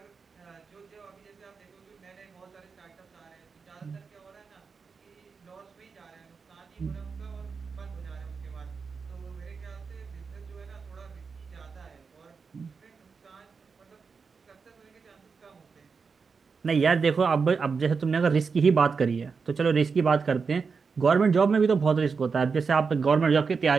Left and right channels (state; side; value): quieter; left; 5.2 dB